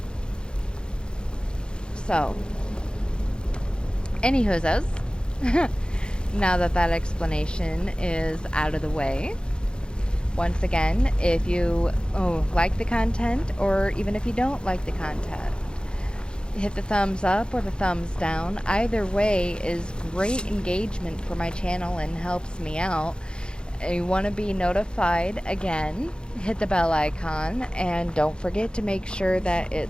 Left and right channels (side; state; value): right; late; 0.050 ms